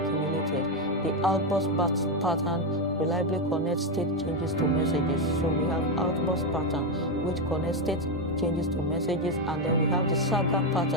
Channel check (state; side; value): normal; both; correlation 0.07